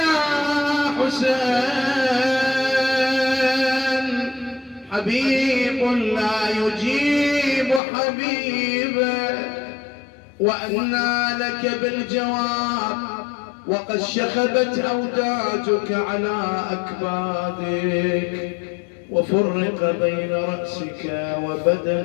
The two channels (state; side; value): drops out; right; at 7.8 s